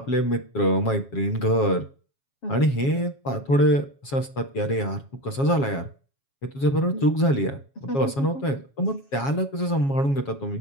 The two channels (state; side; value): late; right; 7.3 ms